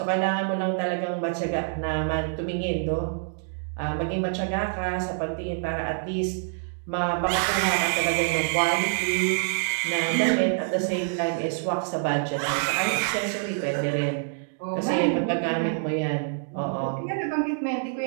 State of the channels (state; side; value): silent; left; digital silence